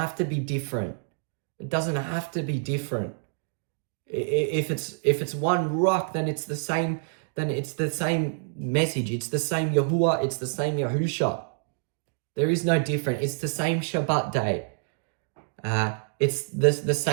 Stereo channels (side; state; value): left; silent; digital silence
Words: to be different. It doesn't have to be different. If it's one Ruach, then it's the same. Then it's the same message. It's the same Yahudah. It's the same Yahusha. There is no different. It's the same Shabbat day. It's the